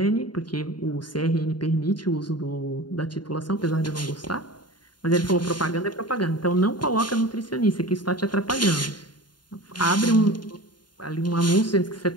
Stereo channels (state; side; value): late; right; 0.71 ms